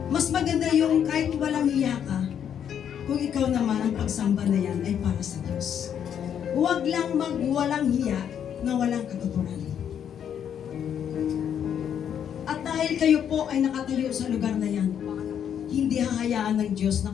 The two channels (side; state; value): right; quieter; 8.8 dB